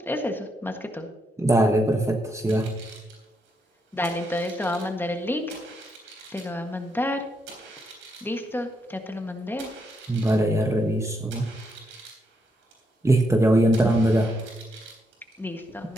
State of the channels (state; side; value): normal; both; correlation 0.79